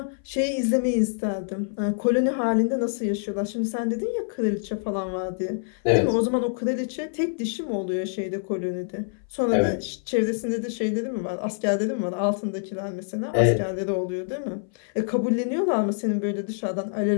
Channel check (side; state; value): right; silent; 58 dB below the other